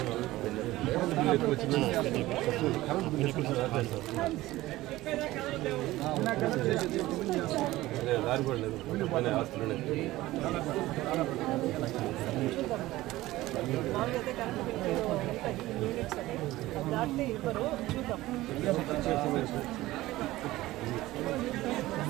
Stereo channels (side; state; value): left; quieter; 17.3 dB